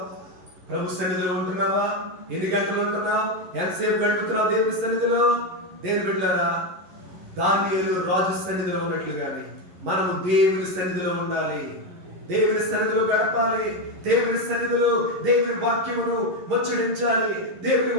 ప్రభు సన్నిధిలో ఉంటున్నావా? ఎన్ని గంటలు ఉంటున్నావు? ఎంతసేపు గడుపుతున్నావు దేవుని సన్నిధిలో? దేవుని బిడ్డలారా, దానియేలు రాజు సన్నిధిలో ఉన్నట్లుగానే మనము దేవుని సన్నిధిలో ఉండాలి. దేవుని సన్నిధిలో గడపాలి. దేవుని సన్నిధిలో దేవుని వాక్యమును ముచ్చడించాలి. దేవుని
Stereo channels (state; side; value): late; left; 11 ms